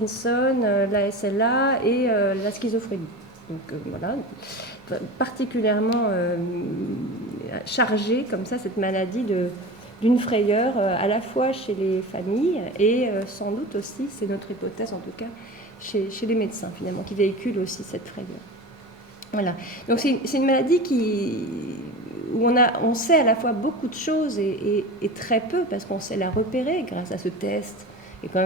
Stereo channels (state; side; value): normal; both; correlation 0.31